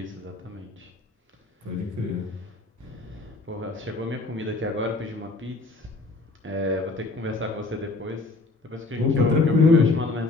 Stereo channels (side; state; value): right; quieter; 3.4 dB